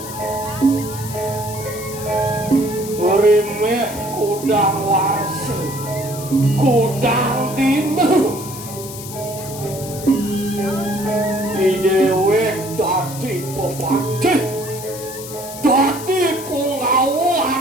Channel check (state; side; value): noise; left; hiss, 12 dB below the sound